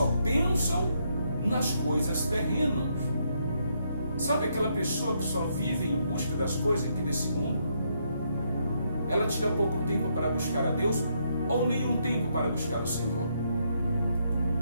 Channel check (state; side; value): inverted; both; correlation -0.75